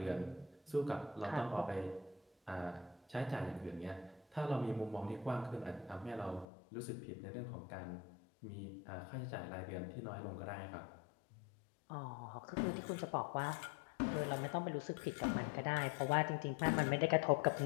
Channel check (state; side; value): drops out; right; at 6.5 s